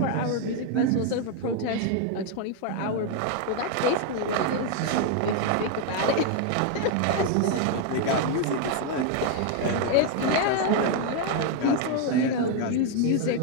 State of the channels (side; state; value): both; different; correlation 0.01